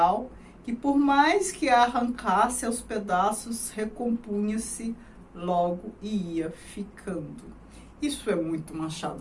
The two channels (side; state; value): both; identical; correlation 1.00